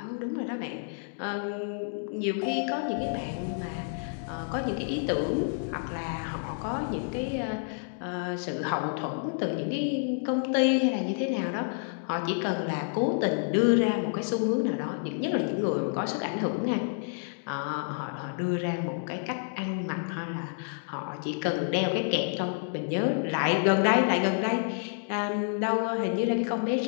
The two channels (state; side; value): silent; right; digital silence